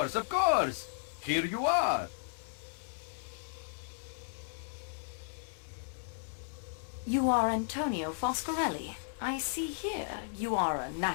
of course! Here you are! You are Antonio Foscarelli. I see here you are a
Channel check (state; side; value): silent; right; digital silence